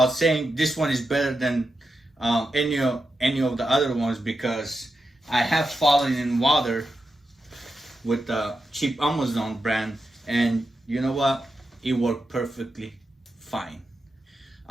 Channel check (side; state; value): both; normal; correlation 0.88